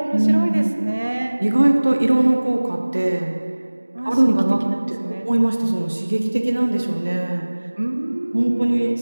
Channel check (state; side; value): inverted; both; correlation -1.00